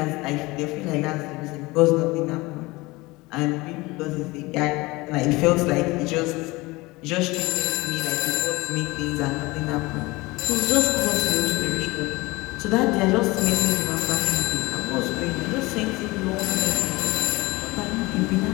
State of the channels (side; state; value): right; quieter; 22.1 dB